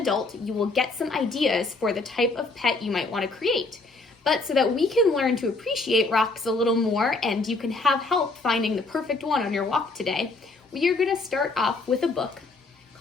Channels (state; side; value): quieter; right; 3.5 dB